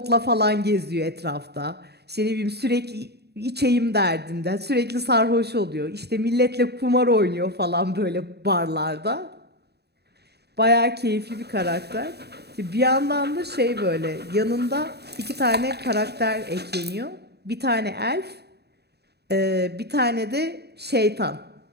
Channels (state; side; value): late; left; 0.48 ms